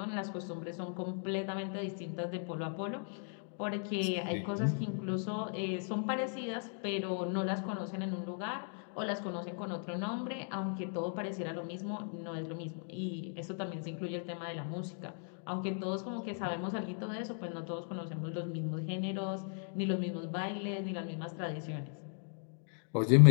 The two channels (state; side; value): silent; right; 53 dB below the other